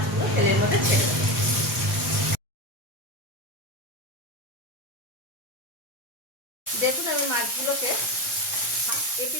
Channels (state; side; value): normal; both; correlation 0.20